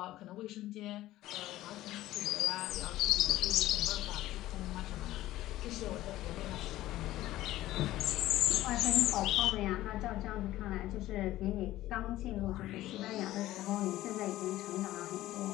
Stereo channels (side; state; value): right; quieter; 15.4 dB